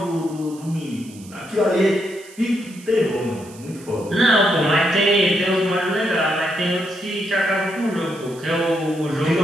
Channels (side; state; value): right; noise; hiss, 21 dB below the sound